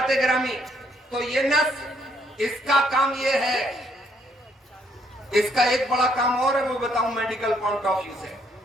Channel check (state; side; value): normal; both; correlation 0.69